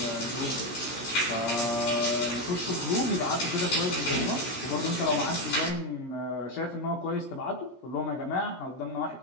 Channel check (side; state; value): right; late; 16 ms